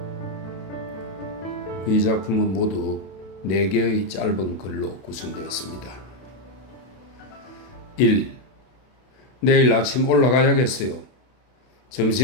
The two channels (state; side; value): late; right; 32 ms